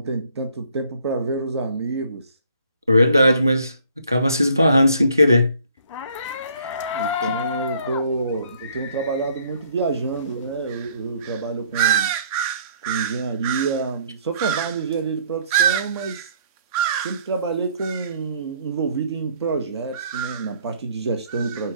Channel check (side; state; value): both; inverted; correlation -0.61